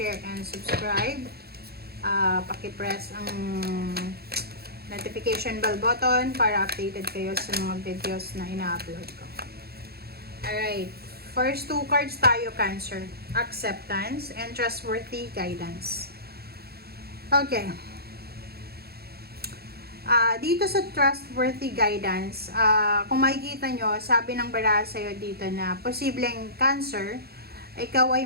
and subscribe. Paki-press ang notification bell button para updated kayo sa mga videos na ina-upload ko. Alright. First two cards tayo, Cancer. Acceptance and trustworthy guidance. Okay. Dito sa trustworthy guidance, kung makikita nyo, sabi ng baraha sa'yo dito na posibleng Cancer, ikaw ay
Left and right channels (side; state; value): left; late; 0.46 ms